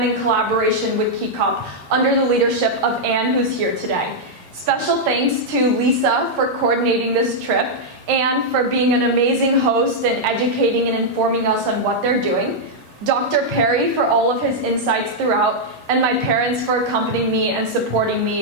in collaboration with KeyCop under the leadership of Anne, who's here today. Special thanks to Lisa for coordinating this trip and for being an amazing host and educating and informing us on what they're doing, Dr. Perry for all of his insights throughout, and my parents for accompanying me and supporting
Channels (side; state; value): both; normal; correlation -0.04